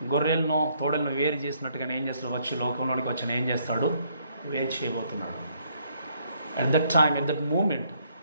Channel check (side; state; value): both; inverted; correlation -0.69